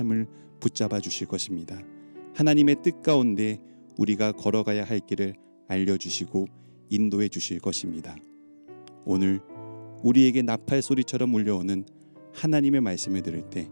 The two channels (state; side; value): inverted; both; correlation -1.00